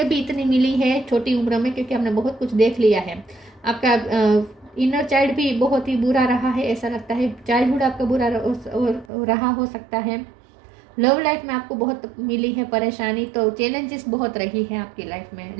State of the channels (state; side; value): drops out; left; at 9.1 s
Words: भी इतनी मिली है छोटी उम्र में, क्योंकि हमने बहुत कुछ देख लिया है। आपका इनर चाइल्ड भी बहुत ही बुरा रहा है, ऐसा लगता है चाइल्डहुड आपका बुरा रहा हो सकता है। लव लाइफ में आपको बहुत मिली है परेशानी, तो चैलेंजेस बहुत रही है आपकी लाइफ में,